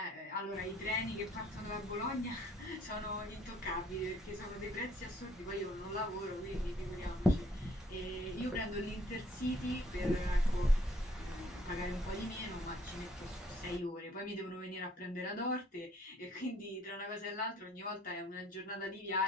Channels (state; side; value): normal; both; correlation 0.62